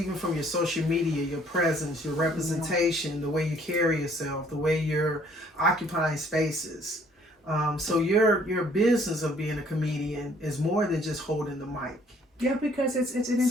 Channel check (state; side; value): normal; both; correlation 0.60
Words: from your social media, your presence, your representation, the way you carry yourself, the way you're occupying spaces. So your business of being a comedian is more than just holding the mic. Yeah, because it's an